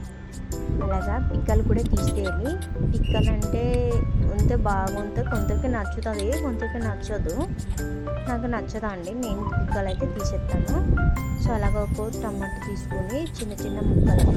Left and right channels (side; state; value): both; identical; correlation 1.00